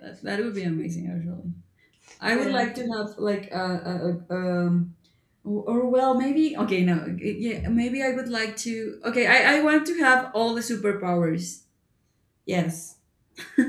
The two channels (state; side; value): identical; both; correlation 1.00